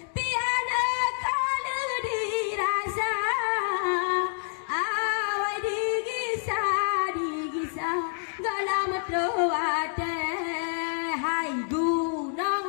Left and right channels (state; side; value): silent; right; digital silence